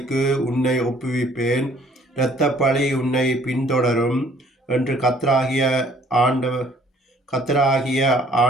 உன்னை ஒப்புவிப்பேன், இரத்த பழி உன்னை பின்தொடரும் என்று கர்த்தராகிய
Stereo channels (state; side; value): normal; both; correlation 0.59